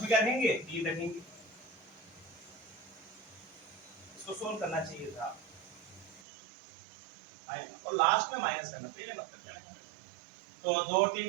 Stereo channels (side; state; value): left; drops out; at 6.2 s